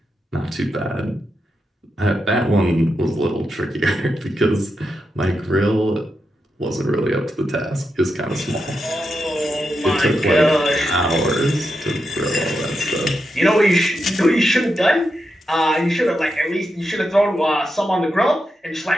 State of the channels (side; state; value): both; normal; correlation 0.86